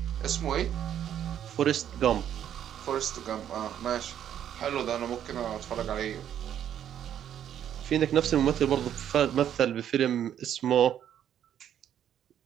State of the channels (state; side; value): quieter; left; 10.0 dB